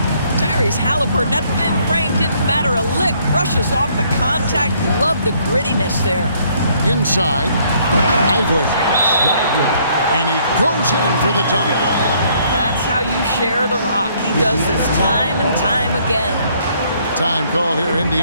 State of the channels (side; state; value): both; inverted; correlation -0.65